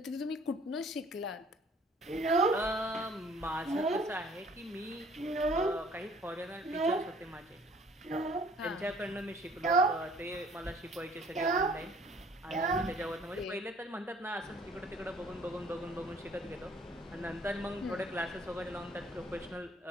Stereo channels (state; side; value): normal; both; correlation 0.55